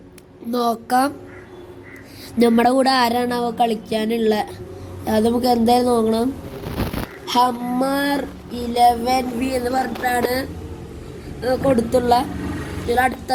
നോക്കാം. നമ്മുടെ കൂടെ ആരാണ് അവ കളിക്കാനുള്ള അത് നമുക്ക് എന്തായാലും നോക്കണം. ഹമ്മർ 11V എന്ന് പറഞ്ഞിട്ടാണ് കൊടുത്തുള്ള. ഇതിൽ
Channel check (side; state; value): both; identical; correlation 1.00